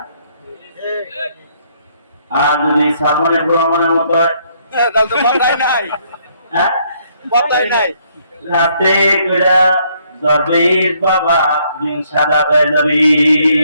আর যদি সাবনের ভ্রমণের মতো হয়, রাতে করে দরবেশ বাবা দিন সাদা হয়ে যাবে।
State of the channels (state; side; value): inverted; both; correlation -0.69